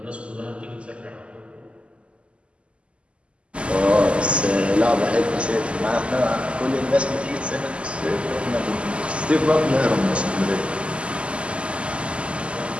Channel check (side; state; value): left; late; 0.054 ms